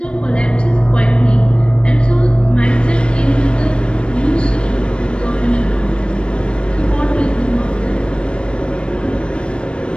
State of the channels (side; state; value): right; late; 0.058 ms